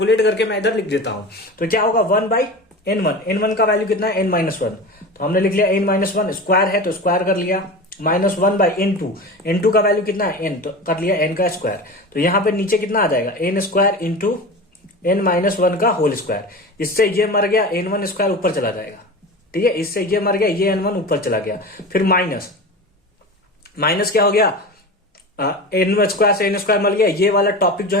करके मैं इधर लिख देता हूं। तो क्या होगा? 1/n1 का वैल्यू कितना है? n-1। तो हमने लिख लिया n-1, स्क्वायर है तो स्क्वायर कर लिया, माइनस 1/n2 का वैल्यू कितना है? n, तो कर लिया n का स्क्वायर। तो यहां पे नीचे कितना आ जाएगा? n स्क्वायर इंटू n-1 का होल स्क्वायर। इससे ये मर गया, n1 स्क्वायर ऊपर चला जाएगा। ठीक है, इससे ये मर गया, ये n1 ऊपर चला गया, फिर माइनस क्या हो गया? n स्क्वायर से n स्क्वायर मिल गया, ये वाला टॉपिक जो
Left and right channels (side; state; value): both; normal; correlation 0.30